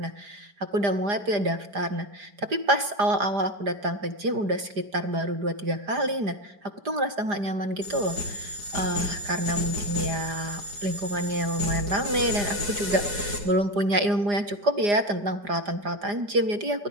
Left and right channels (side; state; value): left; late; 4.9 ms